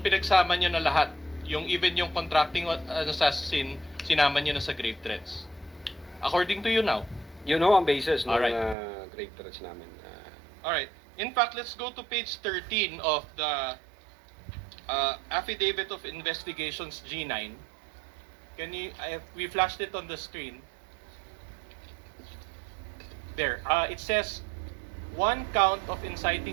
pinagsama nyo na lahat. Even yung contracting assassin, sinama nyo na sa grave threats. According to you now. You know ang basis ng Alright. grave threats namin. Alright. In fact, let's go to page 13 of the Affidavit of Investigations G9. We flashed it on the screen. There. It says 1 count of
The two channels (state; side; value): drops out; left; at 8.8 s